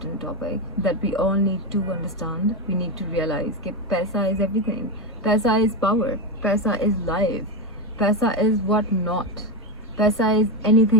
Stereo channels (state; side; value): normal; both; correlation 0.12